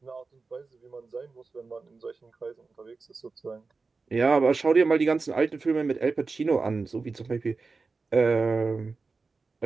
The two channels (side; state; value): left; quieter; 4.2 dB